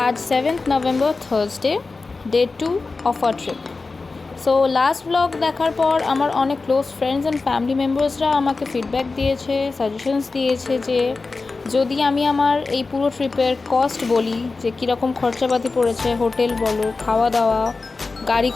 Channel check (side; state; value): right; quieter; 3.9 dB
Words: আজ 7th November, Thursday, day 2 of our trip. So last blog দেখার পর আমার অনেক ক্লোজ ফ্রেন্ডস অ্যান্ড ফ্যামিলি মেম্বার্সরা আমাকে ফিডব্যাক দিয়েছে, সাজেশনস দিয়েছে যে যদি আমি আমার এই পুরো ট্রিপের কস্ট বলি, যে কীরকম খরচাপাতি পড়েছে, হোটেল বলো, খাওয়া দাওয়া, গাড়ি